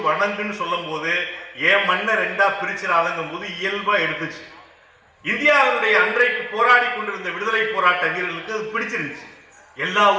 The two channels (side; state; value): both; identical; correlation 1.00